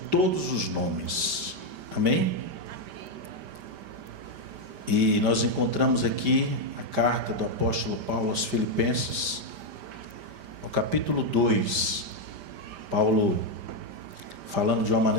todos os nomes. Amém? E nós encontramos aqui a carta do apóstolo Paulo aos Filipenses, no capítulo 2. Paulo falando de uma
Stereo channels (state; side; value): late; left; 5.1 ms